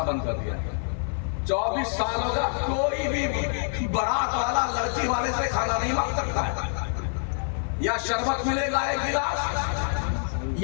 बंद कर दिया। 24 साल होगा, कोई भी बारात वाला लड़की वाले से खाना नहीं मांग सकता है। या शरबत मिलेगा 1 गिलास,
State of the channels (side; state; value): right; silent; 56 dB below the other